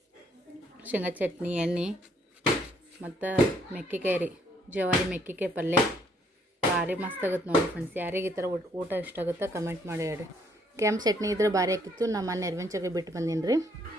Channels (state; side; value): normal; both; correlation 0.68